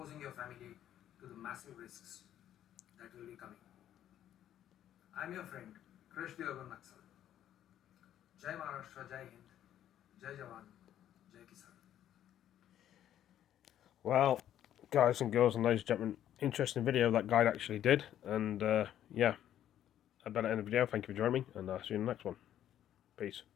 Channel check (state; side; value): quieter; right; 11.2 dB